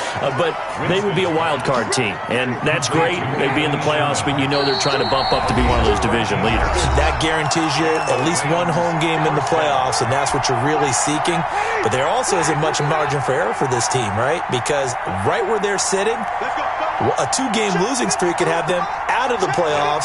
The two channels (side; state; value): both; identical; correlation 1.00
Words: But they would be a wild card team. And that's great. They'd be in the playoffs, but you know they're trying to bump up to be one of those division leaders. That guarantees you at least one home game in the playoffs, and that's what you're really seeking. But there also isn't much margin for error for this team, right? Because right where they're sitting, a 2-game losing streak could have them out of the